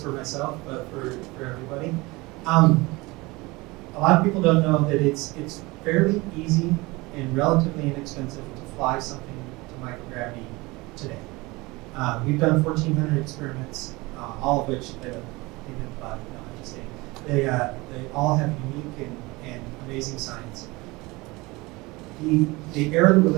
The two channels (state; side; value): quieter; left; 23.0 dB